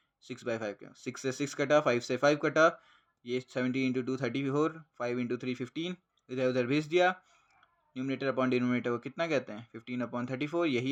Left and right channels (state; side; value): identical; both; correlation 1.00